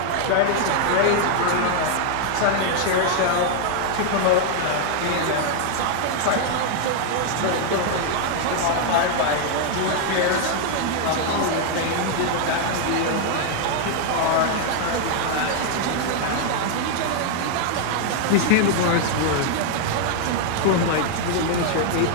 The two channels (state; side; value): different; both; correlation 0.00